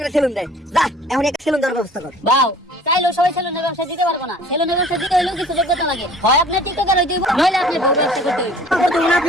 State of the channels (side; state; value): both; normal; correlation 0.49